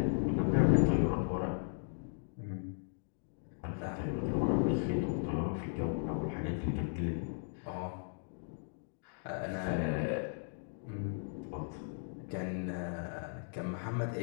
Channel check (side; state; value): right; silent; digital silence